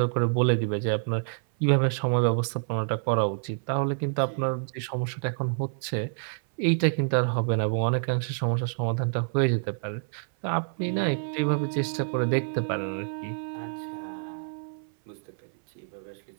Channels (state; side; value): silent; left; 58 dB below the other